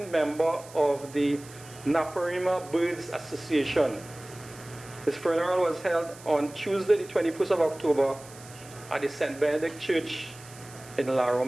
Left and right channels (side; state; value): right; noise; hiss, 19 dB below the sound